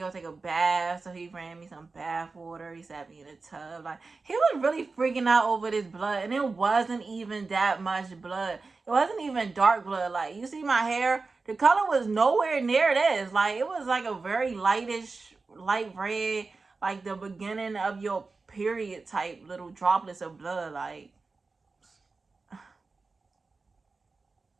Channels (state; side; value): quieter; left; 4.0 dB